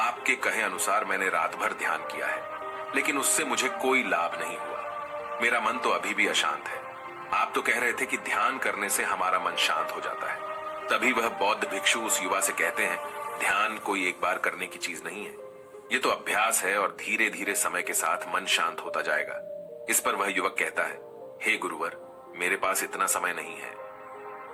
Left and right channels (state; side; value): identical; both; correlation 1.00